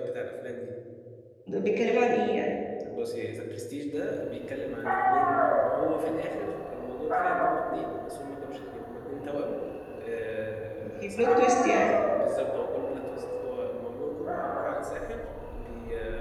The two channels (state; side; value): identical; both; correlation 1.00